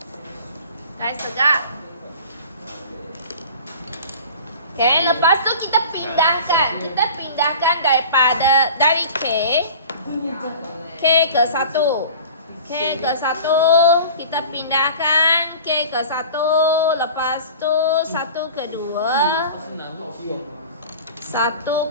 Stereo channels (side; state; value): both; inverted; correlation -0.40